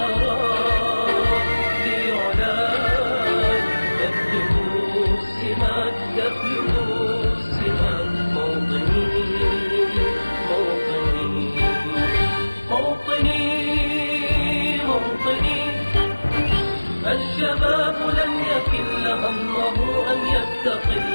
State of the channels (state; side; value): inverted; both; correlation -1.00